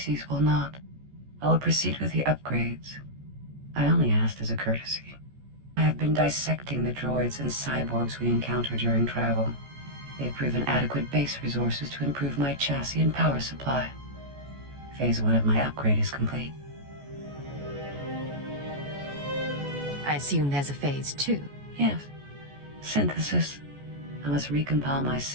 will not. I will proceed with the upgrades. I only asked as a courtesy. I have been dissecting the droids and cyborgs we encounter during travel. They have proven adequate base resources to improve my chassis and power supply. Phase 1 of my upgrade is complete. I assume there's a phase 2. Yes. Synthesis. I must recompile my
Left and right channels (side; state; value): left; late; 14 ms